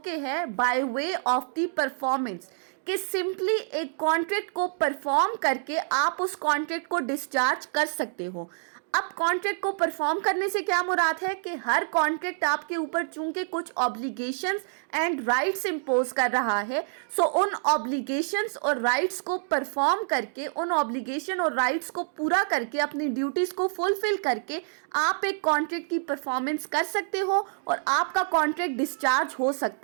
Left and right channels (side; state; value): left; silent; digital silence